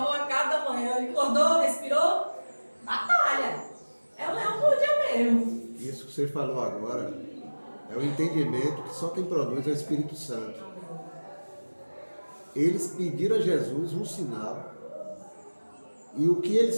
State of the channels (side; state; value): both; inverted; correlation -1.00